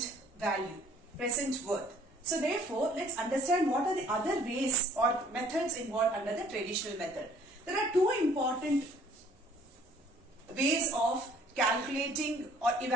value. Present worth. So therefore, let's understand what are the other ways or methods involved under the traditional method. There are two important ways of calculating or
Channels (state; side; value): normal; both; correlation 0.57